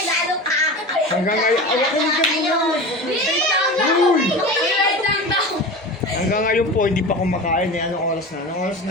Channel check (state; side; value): normal; both; correlation 0.31